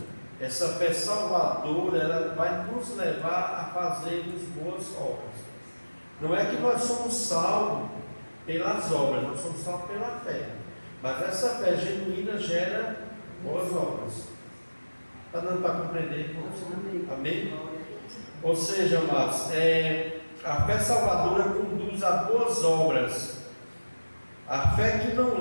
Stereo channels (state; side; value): inverted; both; correlation -1.00